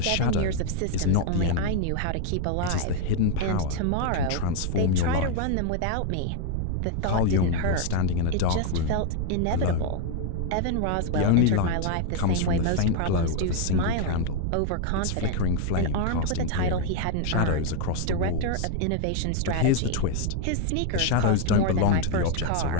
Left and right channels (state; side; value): different; both; correlation 0.00